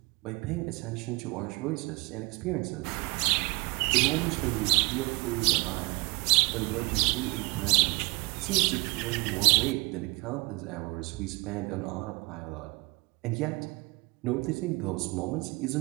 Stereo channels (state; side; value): quieter; left; 27.2 dB